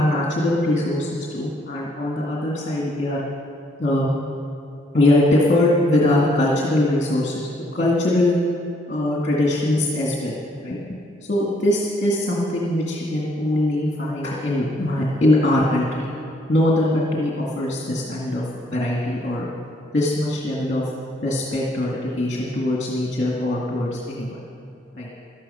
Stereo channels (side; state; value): both; normal; correlation 0.68